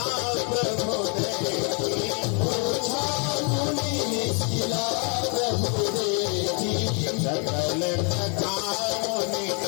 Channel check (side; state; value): right; quieter; 37.1 dB